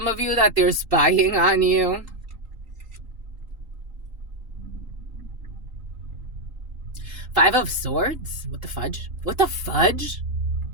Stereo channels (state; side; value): late; left; 3.8 ms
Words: of you that they're spying on you. Five of Swords? What the fudge? What the fudge?